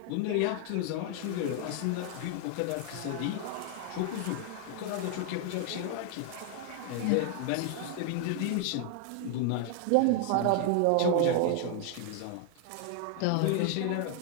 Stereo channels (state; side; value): different; both; correlation 0.00